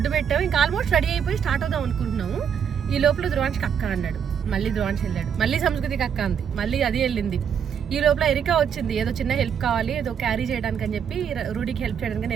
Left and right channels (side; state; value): left; quieter; 7.8 dB